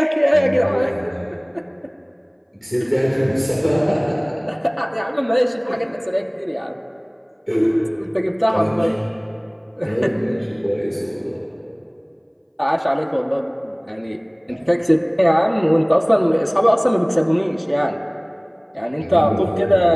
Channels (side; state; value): both; identical; correlation 1.00